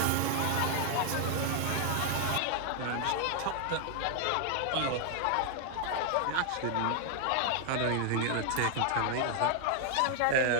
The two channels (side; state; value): both; different; correlation 0.00